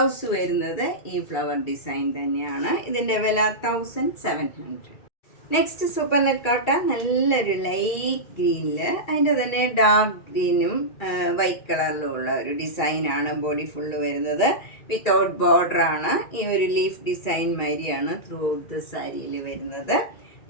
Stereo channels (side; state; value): right; late; 2.3 ms